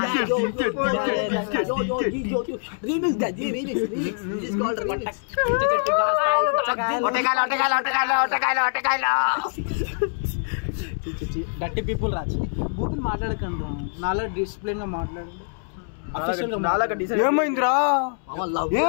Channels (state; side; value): silent; right; 62 dB below the other